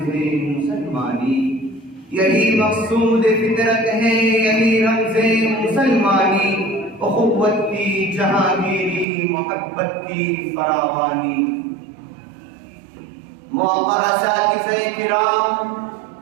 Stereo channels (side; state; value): left; drops out; at 9.1 s